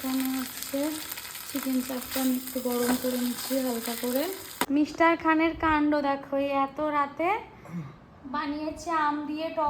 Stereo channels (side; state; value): both; identical; correlation 1.00